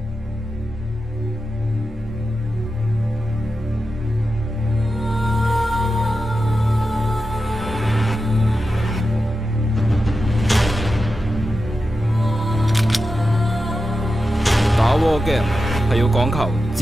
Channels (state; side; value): normal; both; correlation 0.91